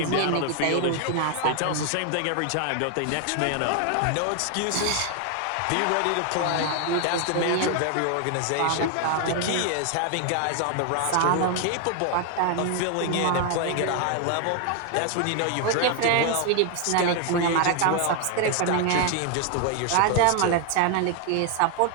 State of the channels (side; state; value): both; different; correlation 0.00